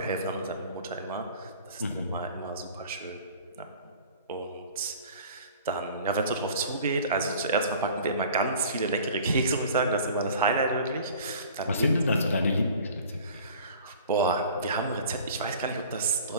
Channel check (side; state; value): both; inverted; correlation -0.45